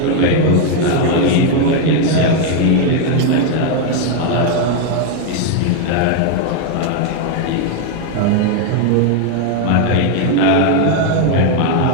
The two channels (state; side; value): different; both; correlation 0.01